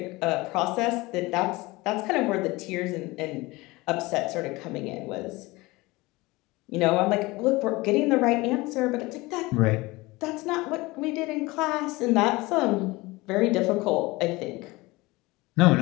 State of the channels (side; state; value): right; quieter; 21.8 dB